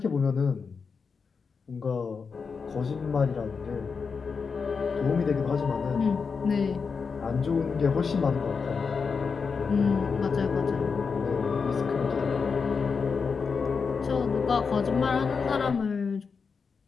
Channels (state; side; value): quieter; right; 5.4 dB